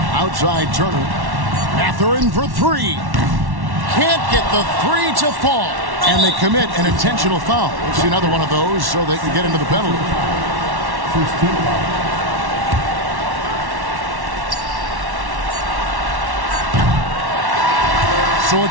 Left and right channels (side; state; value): left; late; 1.1 ms